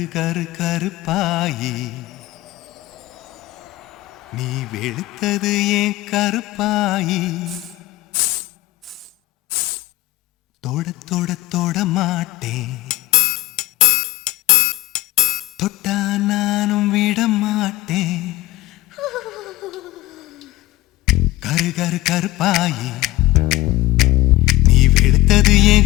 கரு கருப்பாயி நீ வெளுத்தது ஏன் கருப்பாயி தொட தொட தொட மாட்டேன் தொட்டா நானும் விட மாட்டேன் கரு கரு கருப்பாயி நீ வெளுத்தது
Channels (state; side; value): quieter; right; 17.9 dB